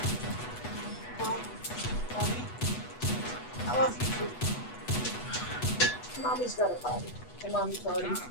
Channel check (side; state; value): right; late; 8.1 ms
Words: I love you. Mommy's got a potty. Hey, Mommy, potty.